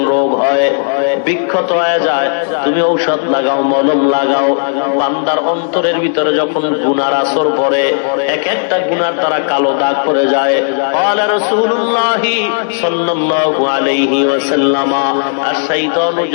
রোগ হয়, বিক্ষত হয়ে যায়, তুমি ঔষধ লাগাও, মলম লাগাও। বান্দার অন্তরের ভিতরে যখন গুনার আসর পড়ে, এক একটা গুনার দ্বারা কালো দাগ পড়ে যায়। ক্বালা রাসূলুল্লাহি সাল্লাল্লাহু আলাইহি ওয়াসাল্লাম, আশ-শাইতানু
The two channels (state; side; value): silent; right; digital silence